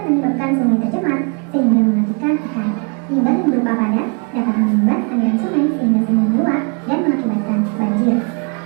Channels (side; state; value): left; quieter; 36.1 dB